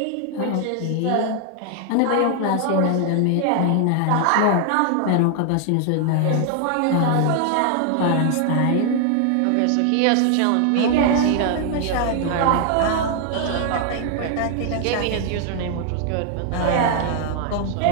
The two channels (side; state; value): both; different; correlation 0.00